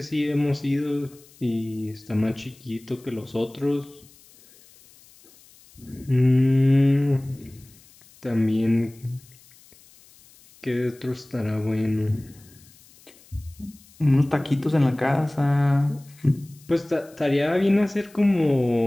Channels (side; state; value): left; noise; hiss, 26 dB below the sound